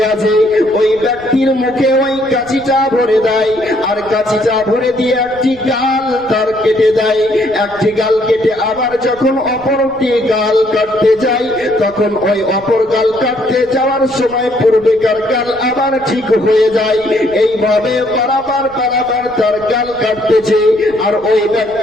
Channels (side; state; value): right; noise; rumble, 22 dB below the sound